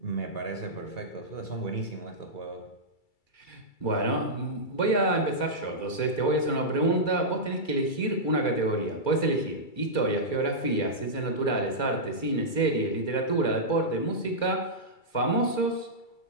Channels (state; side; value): late; right; 2.3 ms